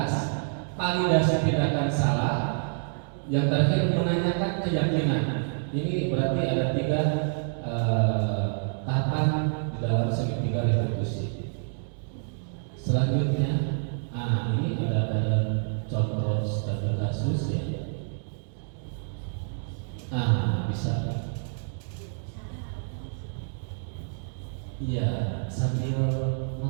validasi tindakan salah, yang terakhir menanyakan keyakinan. Ini berarti ada 3 tahapan di dalam segitiga restitusi. Selanjutnya, ini ada contoh studi kasus ya. Bisa. Iya, sambil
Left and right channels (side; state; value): left; silent; digital silence